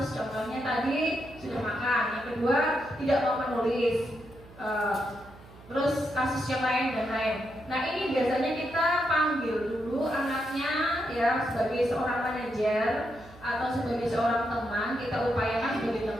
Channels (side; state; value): right; noise; hum, 21 dB below the sound